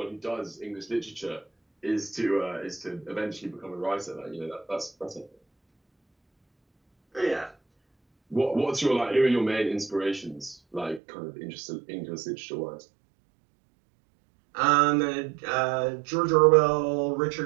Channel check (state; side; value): drops out; left; at 11.0 s